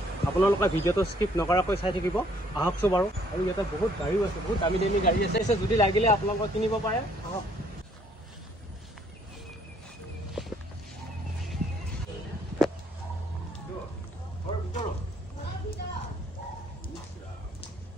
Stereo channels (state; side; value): normal; both; correlation 0.64